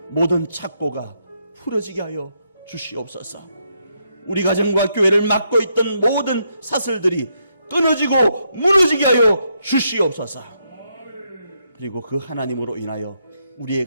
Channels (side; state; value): both; inverted; correlation -0.78